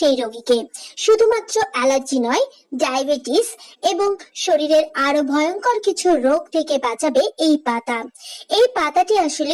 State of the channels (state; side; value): identical; both; correlation 1.00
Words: রোগীকে। শুধুমাত্র অ্যালার্জি নয়, ডায়াবেটিস এবং শরীরের আরো ভয়ঙ্কর কিছু রোগ থেকে বাঁচাবে এই পাতা। এই পাতাটি